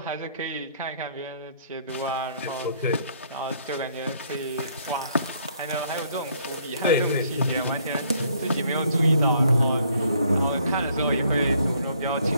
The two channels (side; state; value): both; inverted; correlation -0.65